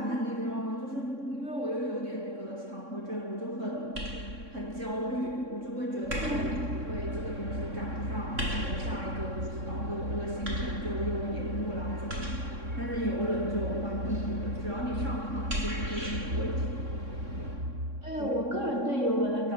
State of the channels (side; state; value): left; late; 3.6 ms